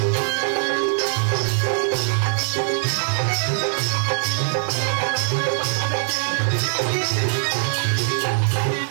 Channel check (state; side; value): silent; left; 64 dB below the other